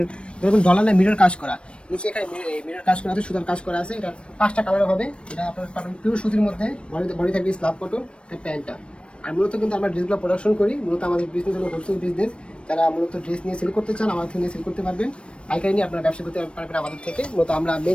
এরকম ডলার মিরর কাজ করা। নিচে এখানে মিরর কাজ করা আছে, সুতার কাজ করা আছে। এটা 5টা কালার হবে। এটা আপনার পাবেন পিওর সুতির মধ্যে, বডি থাকবে স্ল্যাব কটন, এটা প্যান্টটা। আর মূলত কিন্তু আমরা ড্রেসগুলো প্রোডাকশন করি। মূলত আমাদের বিজনেস হলো হোলসেল বিজনেস। যারা মূলত ড্রেস নিয়ে সেল করতে চান আমাদের থেকে সেল করতে পারবেন, পাইকারি নিয়ে আপনারা ব্যবসা করতে পারবেন আমাদের থেকে। মূলত আমরা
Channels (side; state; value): right; late; 0.058 ms